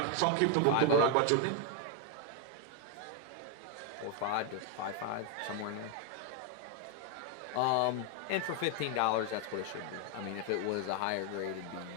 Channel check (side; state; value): both; different; correlation 0.00